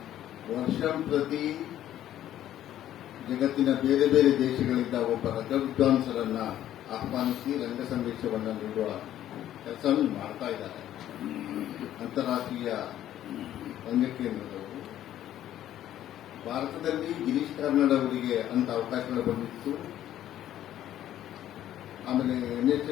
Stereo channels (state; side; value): quieter; right; 12.1 dB